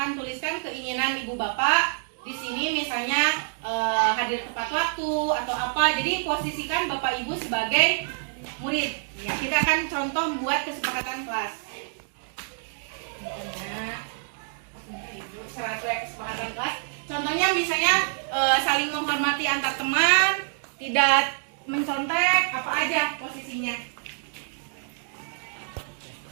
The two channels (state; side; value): silent; left; digital silence